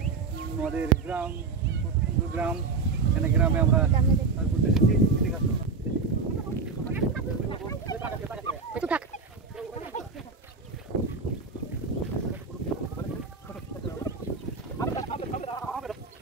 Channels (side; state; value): left; quieter; 4.7 dB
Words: আমাদের গ্রাম, সুন্দর গ্রাম। এখানে গ্রামে আমরা ঘুরতে এসেছি। ঠিক আছে,